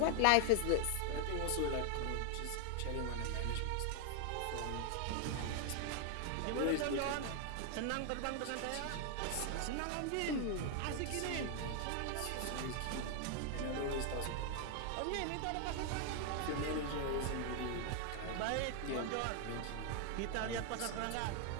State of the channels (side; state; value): both; different; correlation 0.00